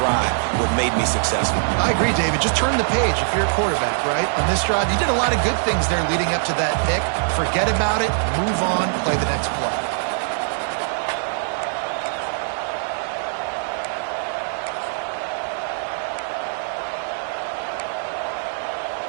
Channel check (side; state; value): left; silent; digital silence